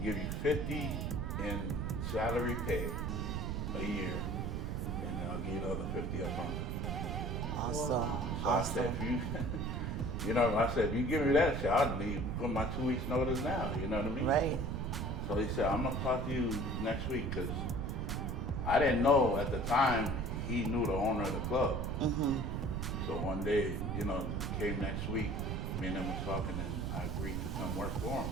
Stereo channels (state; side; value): noise; right; rumble, 1 dB below the sound